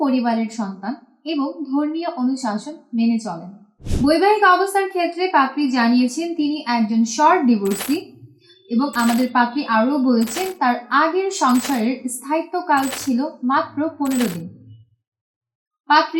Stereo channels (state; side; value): identical; both; correlation 1.00